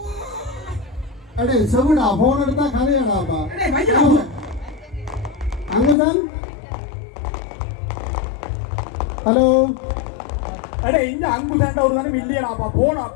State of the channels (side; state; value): right; drops out; at 6.0 s